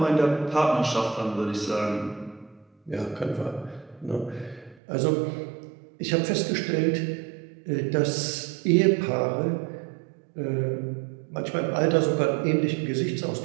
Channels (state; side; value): drops out; left; at 4.8 s